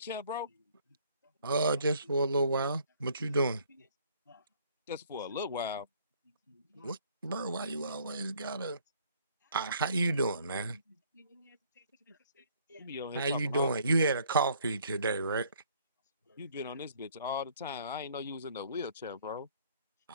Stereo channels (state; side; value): inverted; both; correlation -0.60